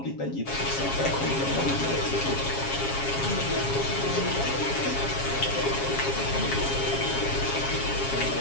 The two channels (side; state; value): right; late; 7.3 ms